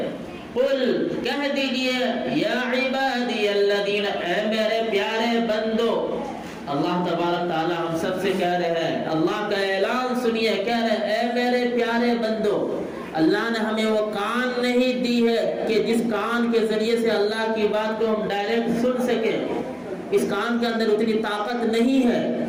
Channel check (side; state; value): both; identical; correlation 1.00